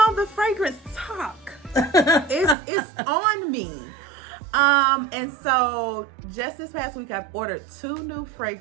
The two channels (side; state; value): left; drops out; at 2.6 s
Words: the fragrance talk. It's on me. And so just this past week, I've ordered 2 new